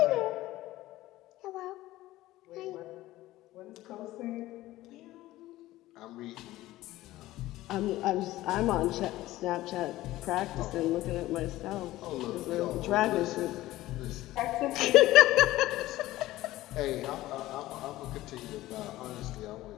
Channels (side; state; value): right; quieter; 16.4 dB